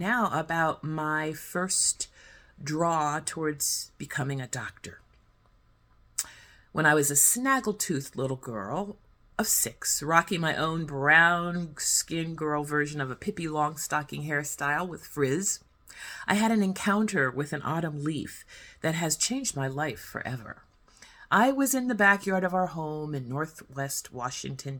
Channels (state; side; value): identical; both; correlation 1.00